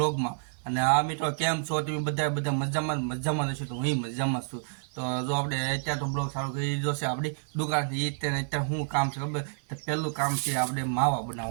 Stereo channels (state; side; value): silent; left; digital silence